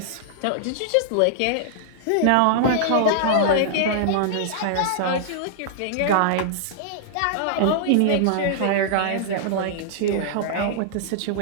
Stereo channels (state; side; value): different; both; correlation -0.01